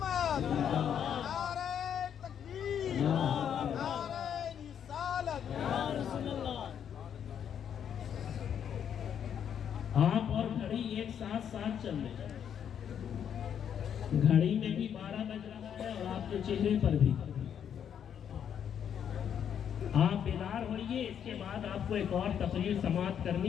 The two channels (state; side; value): quieter; right; 8.6 dB